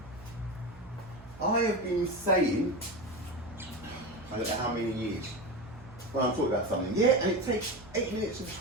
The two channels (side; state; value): right; noise; hum, 19 dB below the sound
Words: I have been saying, I don't know how many years, when I'm talking about something, yeah, and it takes 8 minutes and